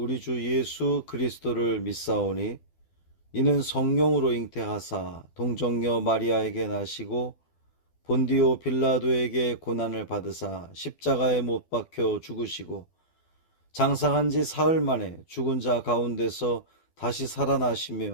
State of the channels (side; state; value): right; late; 12 ms